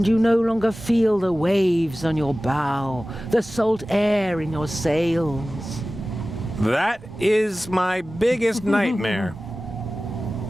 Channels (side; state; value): both; normal; correlation 0.96